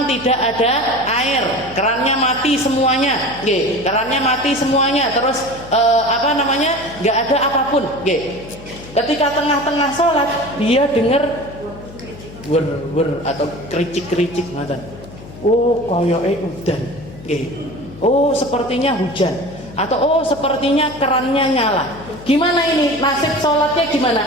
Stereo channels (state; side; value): noise; left; hum, 17 dB below the sound